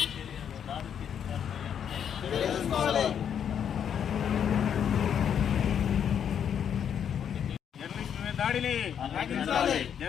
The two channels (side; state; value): right; quieter; 8.4 dB